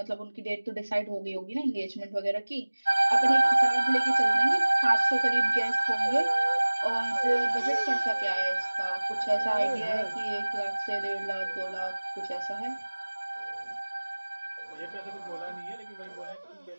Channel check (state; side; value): inverted; both; correlation -1.00